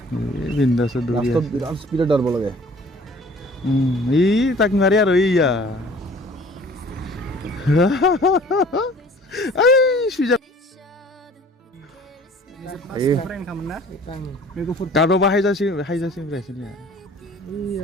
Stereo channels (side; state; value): both; normal; correlation 0.50